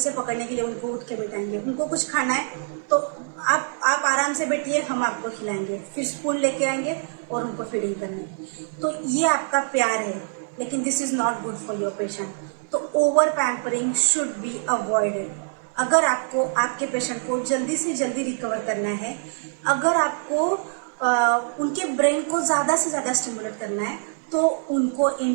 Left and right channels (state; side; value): silent; left; digital silence